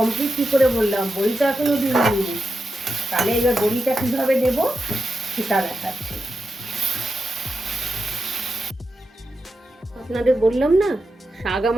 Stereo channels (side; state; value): both; normal; correlation 0.89